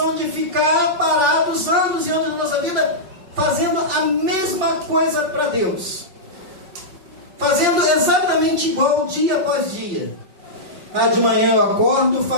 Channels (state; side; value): late; left; 5.3 ms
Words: de ficar parados anos e anos da nossa vida, fazendo a mesma coisa para Deus. Fazendo exatamente igual dia após dia. De manhã eu acordo,